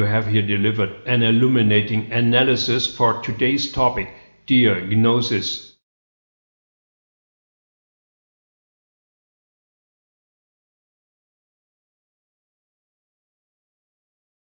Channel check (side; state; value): both; inverted; correlation -1.00